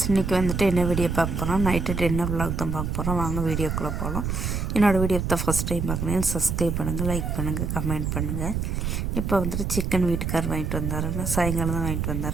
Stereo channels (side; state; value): right; noise; rumble, 2 dB below the sound